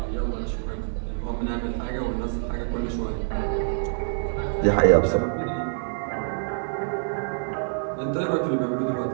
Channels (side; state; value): left; silent; digital silence